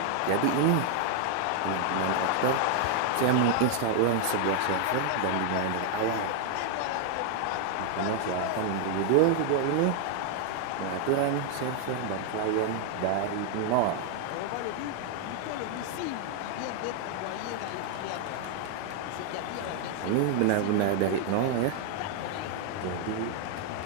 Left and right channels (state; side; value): different; both; correlation 0.00